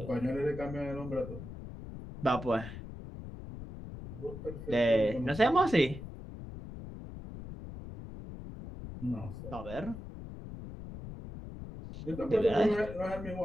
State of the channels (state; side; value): noise; left; rumble, 11 dB below the sound